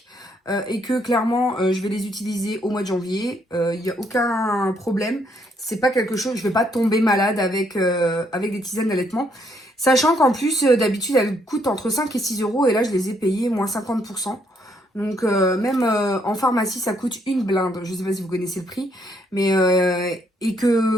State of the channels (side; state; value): both; normal; correlation 0.71